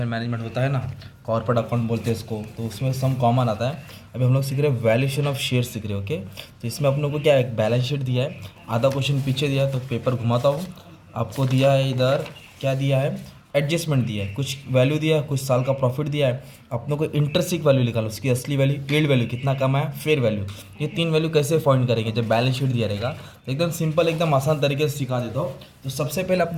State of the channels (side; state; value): both; identical; correlation 1.00